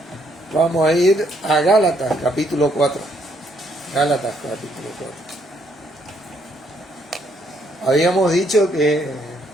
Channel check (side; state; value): both; normal; correlation 0.71